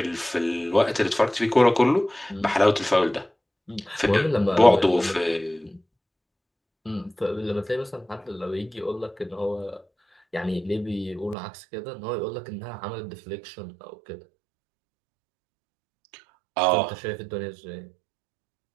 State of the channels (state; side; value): drops out; left; at 11.4 s